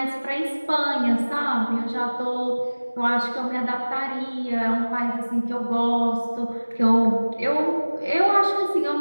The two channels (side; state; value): both; inverted; correlation -1.00